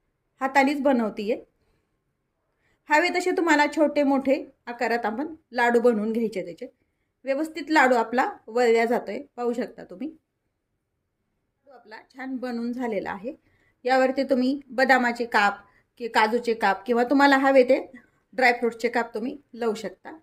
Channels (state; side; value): identical; both; correlation 1.00